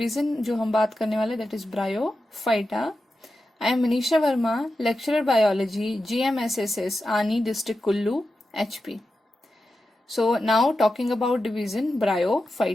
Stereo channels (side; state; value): both; normal; correlation 0.91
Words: जो हम बात करने वाले that is Bryophyta. I am Manisha Verma, lecturer Biology, GMSSS, Ani District Kullu, HP. So now talking about division